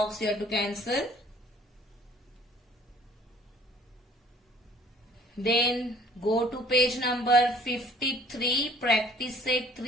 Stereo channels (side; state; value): both; normal; correlation 0.55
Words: you have to cancel. Then go to page number 53. Practice set